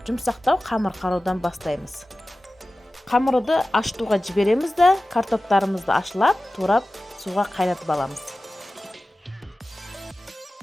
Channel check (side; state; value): both; normal; correlation 0.96